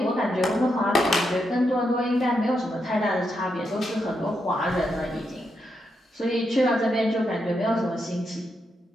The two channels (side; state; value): both; normal; correlation 0.82